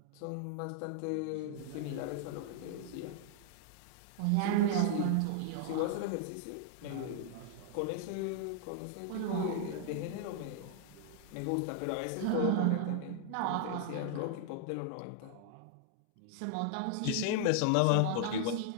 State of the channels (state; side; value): different; both; correlation 0.00